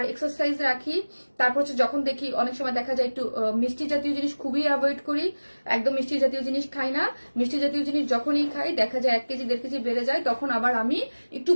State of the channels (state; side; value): inverted; both; correlation -1.00